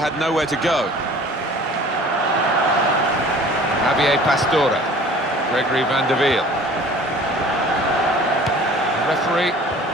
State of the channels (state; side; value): normal; both; correlation 0.47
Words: nowhere to go. Javier Pastore, Gregory van der Wiel. The referee